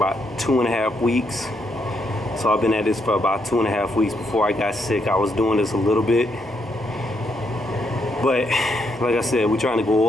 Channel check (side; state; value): both; normal; correlation 0.77